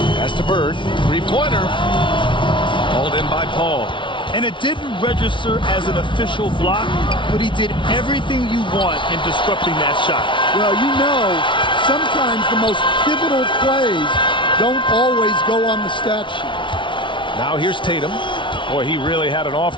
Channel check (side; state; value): right; late; 0.24 ms